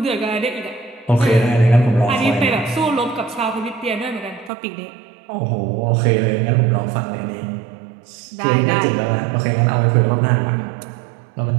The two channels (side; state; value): left; drops out; at 4.5 s